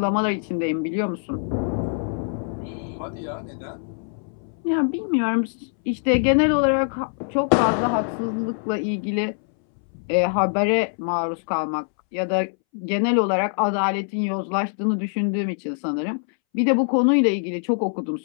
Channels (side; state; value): right; silent; 63 dB below the other